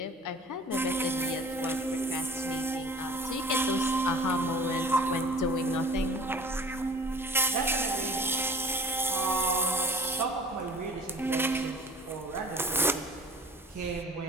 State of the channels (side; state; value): both; normal; correlation 0.45